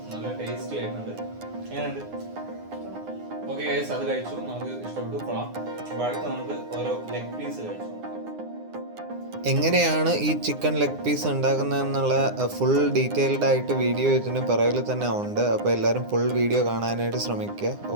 നല്ല ടേസ്റ്റി ആയിട്ടുണ്ട്. എങ്ങനെയുണ്ട്? ഓക്കെ ഗൈസ്, അത് കഴിച്ചു, നമുക്ക് ഇഷ്ടപ്പെട്ടു, കൊള്ളാം. അപ്പോൾ അടുത്ത് നമുക്ക് ഓരോ ലെഗ് പീസ് കഴിച്ചു. എങ്ങനെയാണ് ഈ ചിക്കൻ ലെഗ് പീസ് ഉണ്ടാക്കുന്നതെന്നുള്ള ഫുൾ ഡീറ്റെയിൽഡ് ആയിട്ട് വീഡിയോ ഇതിന് പിറകിൽ തന്നെ ഉണ്ട്. അപ്പോൾ എല്ലാവരും ഫുൾ വീഡിയോ കാണാനായിട്ട് ശ്രമിക്കുക.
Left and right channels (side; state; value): left; late; 9.7 ms